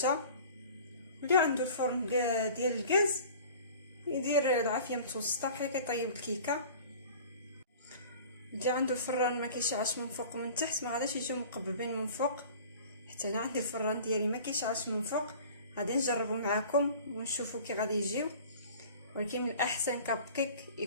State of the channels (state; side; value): inverted; both; correlation -0.44